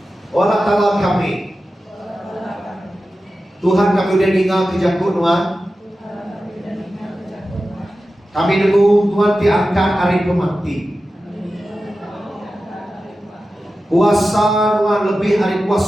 Allah Ta'ala kami. Tuhan kami udah tinggal ke Jakut Tuhan. Kami nunggu Tuhan diangkat hari pemati. Kuasa Tuhan lebih hari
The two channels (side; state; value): both; normal; correlation 0.93